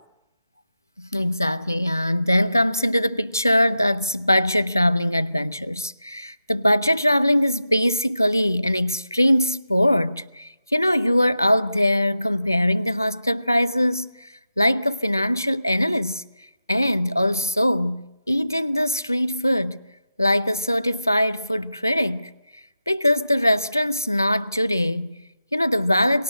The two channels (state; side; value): inverted; both; correlation -0.90